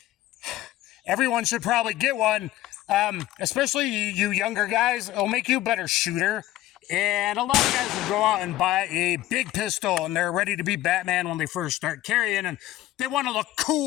everyone should probably get one, especially you younger guys. It'll make you a better shooter. And a lot of guys will go out and buy a big pistol, and they're ready to be Batman when they first start carrying, and they want to look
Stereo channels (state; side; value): quieter; right; 14.9 dB